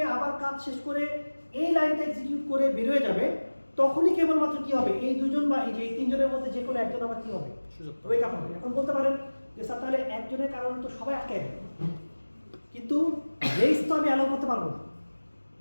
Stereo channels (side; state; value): both; inverted; correlation -1.00